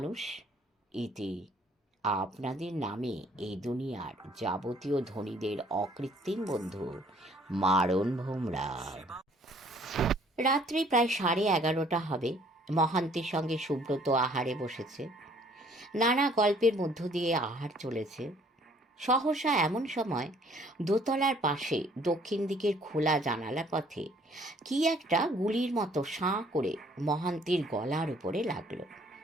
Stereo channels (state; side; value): normal; both; correlation 0.59